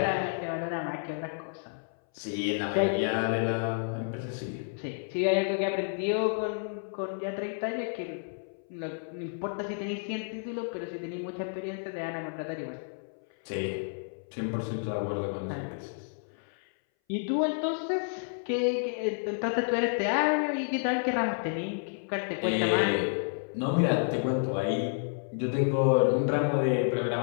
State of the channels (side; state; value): right; silent; 57 dB below the other